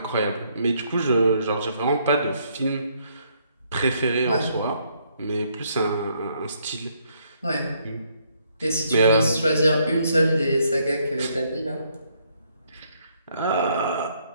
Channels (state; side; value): inverted; both; correlation -0.70